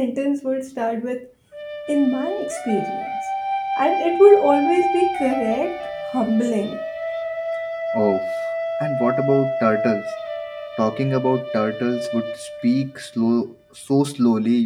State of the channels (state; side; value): identical; both; correlation 1.00